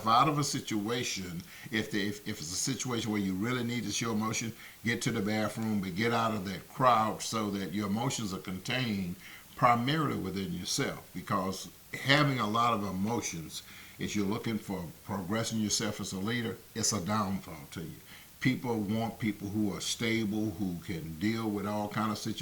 out of a situation. If it's a situation where you really need to show emotion, get to the bathroom, but get out of that crowd so that your emotions are contained primarily within yourself, because having a lot of emotions, if you're looking for progressing yourself as a leader, it's a downfall to you. People want people who are stable, who can deal with all kind of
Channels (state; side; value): identical; both; correlation 1.00